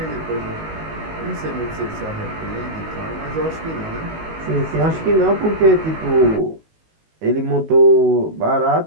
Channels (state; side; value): late; left; 19 ms